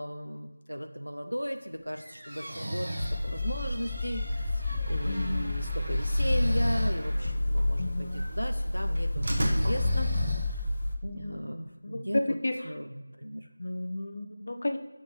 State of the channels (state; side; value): inverted; both; correlation -0.96